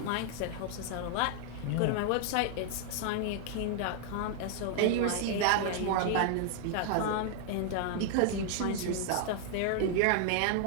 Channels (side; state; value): both; different; correlation 0.00